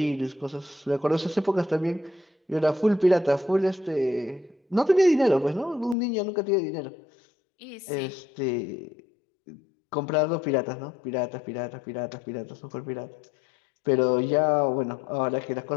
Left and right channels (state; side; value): drops out; right; at 6.0 s